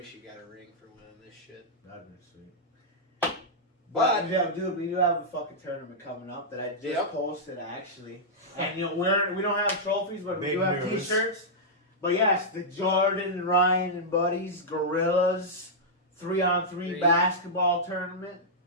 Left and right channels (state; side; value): normal; both; correlation -0.09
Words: you got a ring for winning this shit. That'd be sweet. But dude, we do have a fucking tournament coming up that I just posted actually, and we don't have trophies, but we do have T-shirts. But yes, the Jordan and Ryan and buddies Gorillas 3-on-3 basketball tournament,